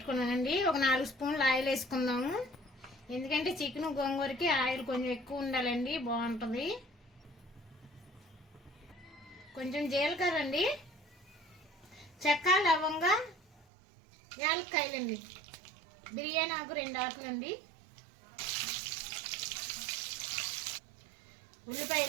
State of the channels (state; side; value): drops out; left; at 13.7 s